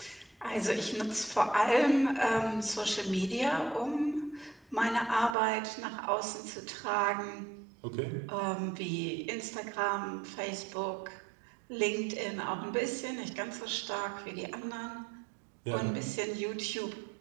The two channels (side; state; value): left; drops out; at 5.4 s